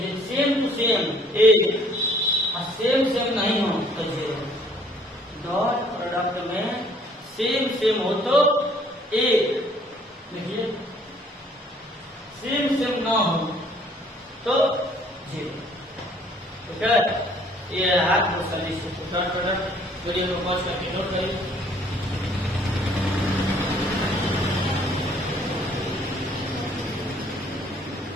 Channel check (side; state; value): both; normal; correlation 0.60